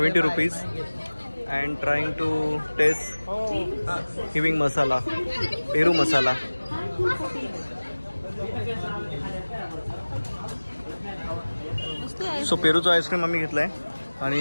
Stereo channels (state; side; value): inverted; both; correlation -1.00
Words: rupees and trying to taste giving masala, peru masala। So पेरूचा आईस्क्रीम आम्ही घेतला आहे